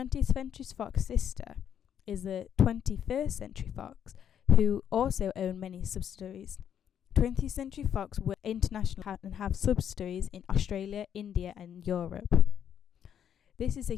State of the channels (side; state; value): right; quieter; 9.0 dB